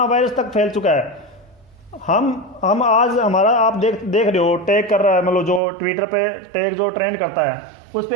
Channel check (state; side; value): drops out; left; at 5.6 s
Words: वायरस तक फैल चुका है, हम आज हमारा आप देख रहे हो टैग कर रहा है, मतलब जो ट्विटर पे टैग जो ट्रेंड करता है उस